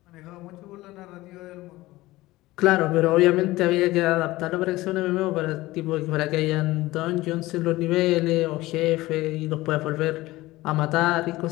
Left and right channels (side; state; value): right; quieter; 18.5 dB